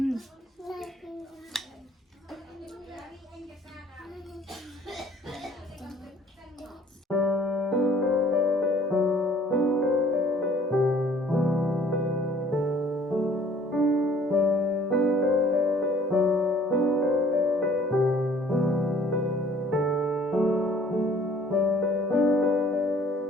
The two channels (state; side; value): normal; both; correlation 0.55